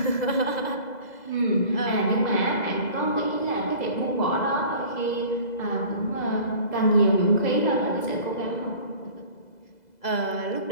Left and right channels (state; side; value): late; right; 2.0 ms